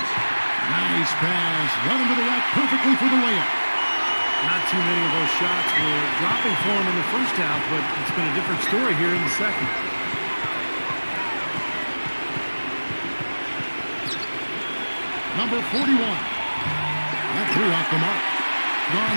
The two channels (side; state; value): both; inverted; correlation -1.00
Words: Nice pass. Run into the rack perfectly for the layup. Not too many of those shots were dropping for him in the first half, but it's been a different story here in the second. Number 41. That threw off the mark.